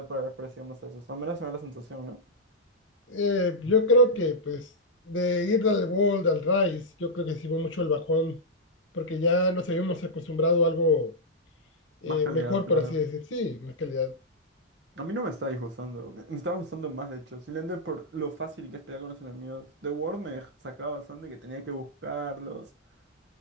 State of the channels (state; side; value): normal; both; correlation -0.07